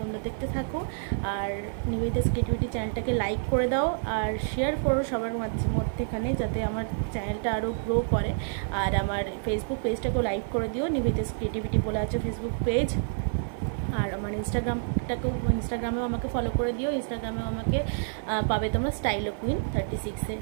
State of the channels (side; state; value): left; silent; digital silence